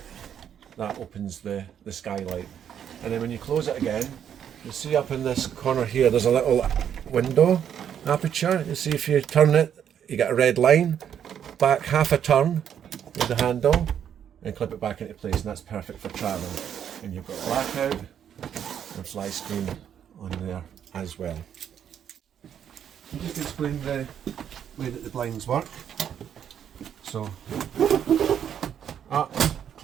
that opens the skylight. And then when you close it again, you'll see up in this corner here there's a little window aperture. You'll see if you turn it, you get a red line. Back half a turn with the handle and clip it back into place, and that's perfect for travel. And you've got blackout and fly screen on there as well. Just to explain the way that the blinds work. So, up,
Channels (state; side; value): quieter; left; 9.0 dB